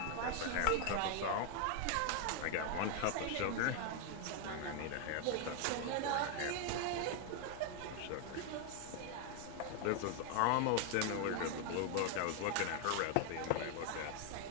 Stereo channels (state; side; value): different; both; correlation 0.01